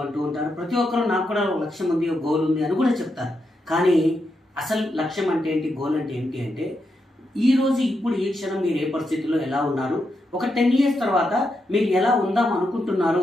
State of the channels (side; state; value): both; normal; correlation 0.84